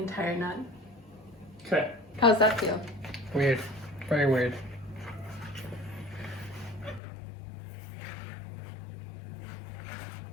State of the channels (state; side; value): drops out; right; at 7.0 s